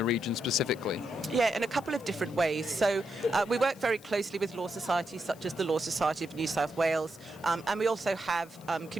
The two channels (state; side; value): noise; left; hiss, 24 dB below the sound